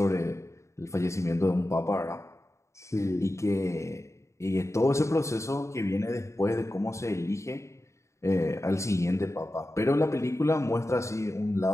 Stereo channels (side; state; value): right; late; 0.14 ms